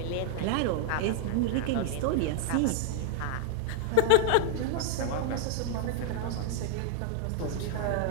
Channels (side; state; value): both; different; correlation 0.01